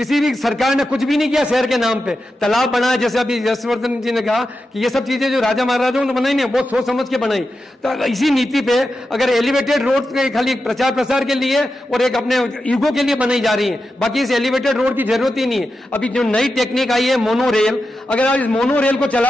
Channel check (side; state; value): both; normal; correlation 0.90